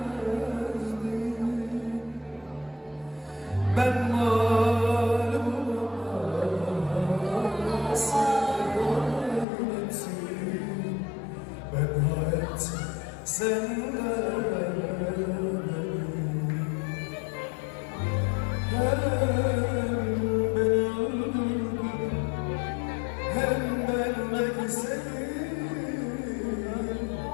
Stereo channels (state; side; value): drops out; right; at 9.5 s